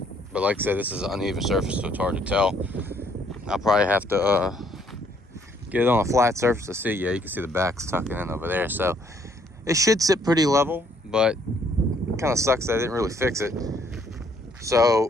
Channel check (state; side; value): normal; both; correlation 0.66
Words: But like I said, this is an uneven surface, so it's hard to tell. I'll probably have to get it on a flat surface to see. Yeah, you can see the back's tucking in over there. So it should sit pretty level, but it kind of sucks that I didn't really fix it.